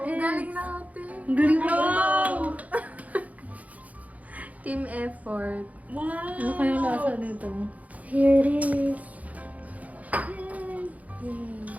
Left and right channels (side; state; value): left; late; 0.072 ms